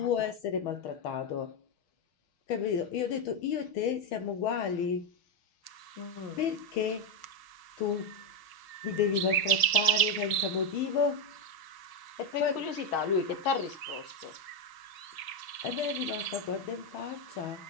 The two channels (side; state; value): right; late; 6.4 ms